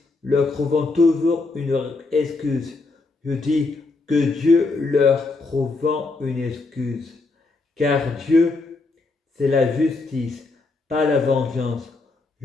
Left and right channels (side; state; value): right; quieter; 3.6 dB